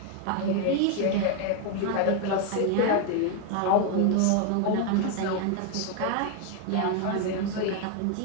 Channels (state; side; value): different; both; correlation 0.01